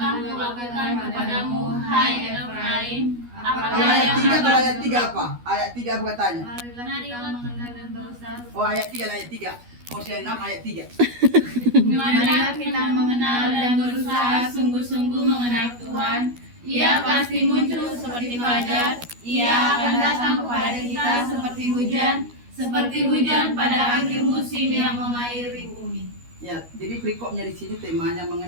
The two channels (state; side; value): late; left; 12 ms